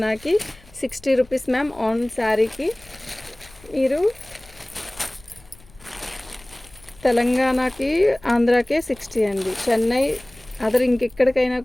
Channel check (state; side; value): noise; left; rumble, 25 dB below the sound